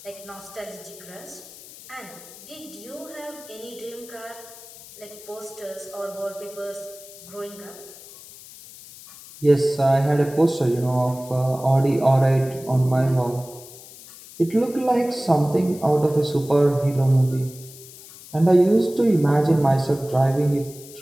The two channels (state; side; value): noise; left; hiss, 18 dB below the sound